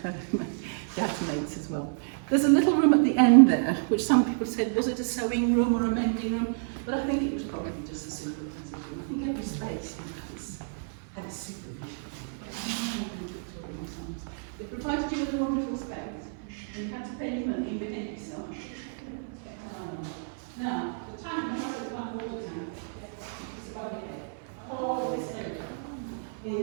dad's mates as well. There's a little room at the end there, which some people said, was it a sewing room or a mending room? But I think it was probably just a simple transit room. I think every space had its supervision. It provided you with a wonderful space, and you had to pay your money and behave yourself. Now, the tank, the water tank, it's about here. All this area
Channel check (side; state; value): left; silent; 58 dB below the other